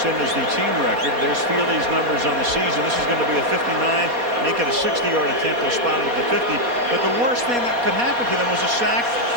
is the team record. There's Feely's numbers on the season. This is going to be a 59, make it a 60-yard attempt. They'll spot it at the 50. But the worst thing that could happen to them was a sack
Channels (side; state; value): left; late; 4.2 ms